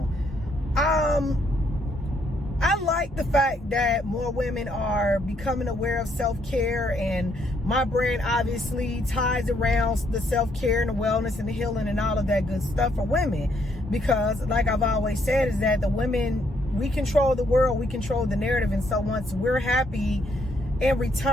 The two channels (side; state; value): both; normal; correlation 0.72